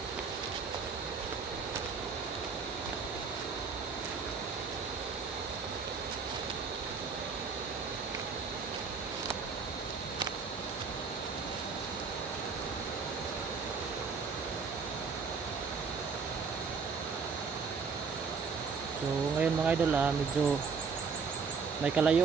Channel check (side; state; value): left; quieter; 5.3 dB